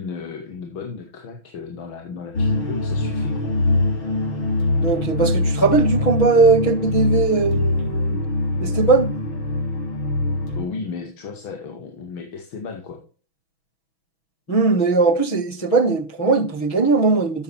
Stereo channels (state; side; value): late; right; 6.1 ms